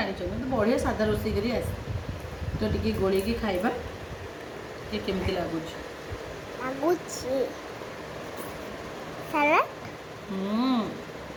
मतलब बढ़िया साधा रोषे कर आसे तो टी गोल खाइबा केमती लगुच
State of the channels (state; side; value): identical; both; correlation 1.00